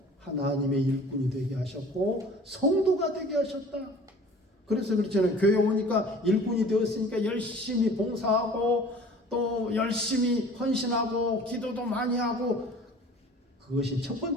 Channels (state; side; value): normal; both; correlation 0.46